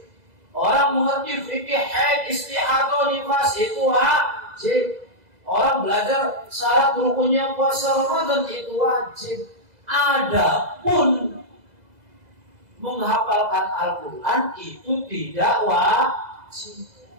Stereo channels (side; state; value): left; late; 2.0 ms